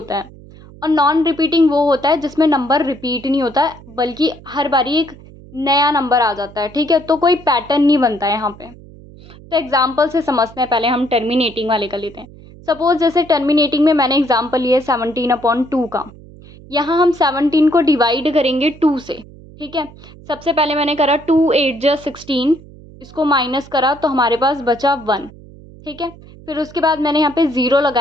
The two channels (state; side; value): noise; right; hum, 20 dB below the sound